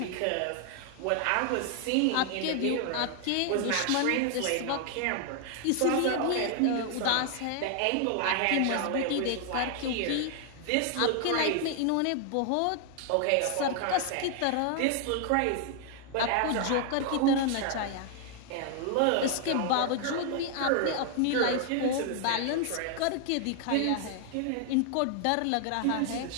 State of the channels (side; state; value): both; different; correlation 0.00